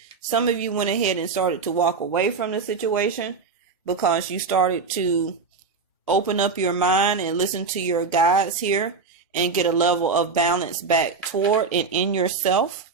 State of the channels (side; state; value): left; quieter; 4.8 dB